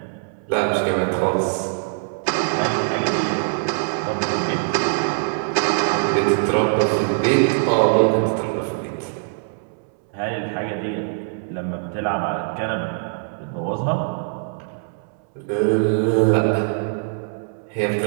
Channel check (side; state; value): left; silent; 64 dB below the other